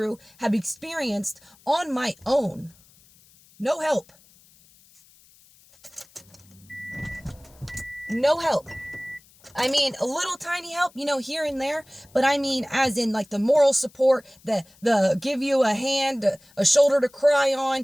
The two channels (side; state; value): left; noise; hiss, 28 dB below the sound